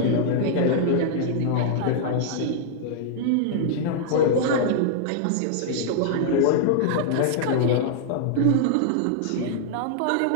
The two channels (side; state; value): both; different; correlation -0.01